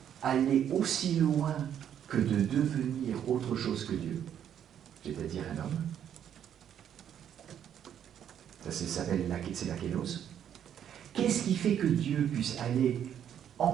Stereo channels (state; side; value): quieter; left; 9.5 dB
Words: aller aussi loin que de devenir autre chose que Dieu, c'est-à-dire un homme? Ça s'appelle c'est la kélos. Qu'est-ce qui fait que Dieu puisse aller